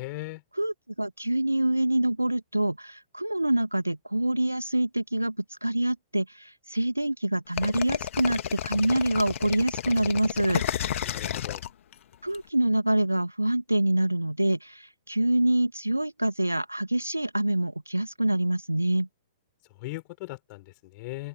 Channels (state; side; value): inverted; both; correlation -0.94